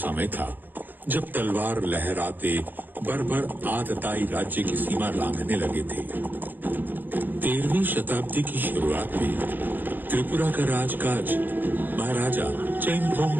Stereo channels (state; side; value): late; left; 0.090 ms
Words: था जब तलवार लहराते बर्बर आतताई राज्य की सीमा लांघने लगे थे। 13वीं शताब्दी की शुरुआत में त्रिपुरा का राजकाज महाराजा